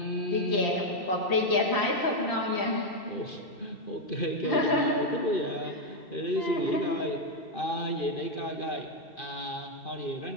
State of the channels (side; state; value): right; late; 2.7 ms